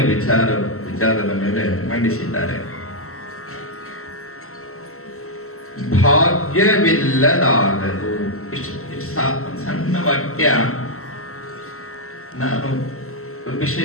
ವಿಚಾರದ ಮೇಲೆ ಮಂಡಿಸಿದ್ದಾರೆ. ಭಾಗ್ಯವಿಲ್ಲದಾಗದು. ಇಷ್ಟು ಸಣ್ಣ ವಾಕ್ಯ ನಾನು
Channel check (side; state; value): right; late; 0.63 ms